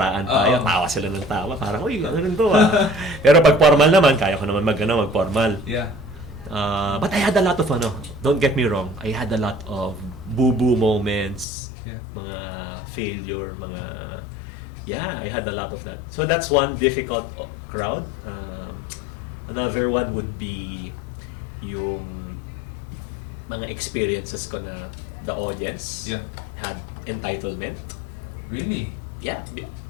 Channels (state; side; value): drops out; right; at 11.5 s